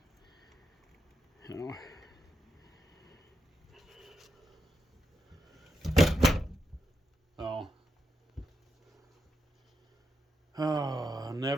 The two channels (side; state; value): both; normal; correlation 0.85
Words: You know. Oh,